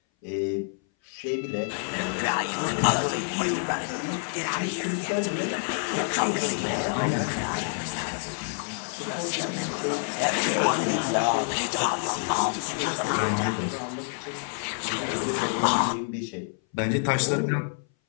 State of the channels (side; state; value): right; silent; 58 dB below the other